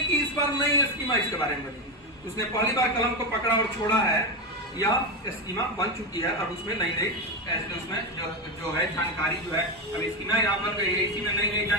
कि इस बार नई स्कीमा इसके बारे में बनी, उसने पहली बार कलम को पकड़ा और छोड़ा है, यह स्कीमा बन चुकी है। अब उसमें नई नई उसमें जो है जानकारी जो है, अब स्कीमा यहाँ बन गई है, इसी में नई नई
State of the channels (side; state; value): both; normal; correlation 0.13